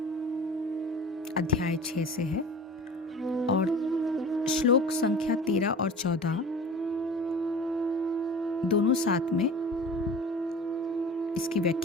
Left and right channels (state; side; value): normal; both; correlation 0.38